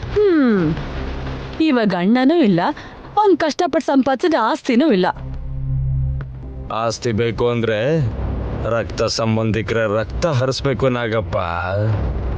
ಇವಾಗ ಅಣ್ಣನೂ ಇಲ್ಲ, ಅವ್ನ್ ಕಷ್ಟಪಟ್ಟು ಸಂಪಾದಿಸಿದ ಆಸ್ತಿನೂ ಇಲ್ಲ. ಆಸ್ತಿ ಬೇಕು ಅಂದ್ರೆ ರಕ್ತ ಸಂಬಂಧಿಕರ ರಕ್ತ ಹರಿಸ್ಬೇಕು ನಾಗಪ್ಪ.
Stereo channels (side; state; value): both; identical; correlation 1.00